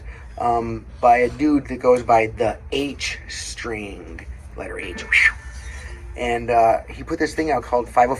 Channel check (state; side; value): identical; both; correlation 1.00